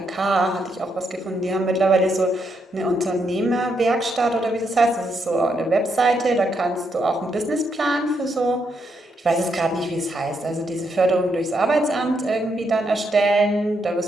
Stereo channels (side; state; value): both; normal; correlation 0.78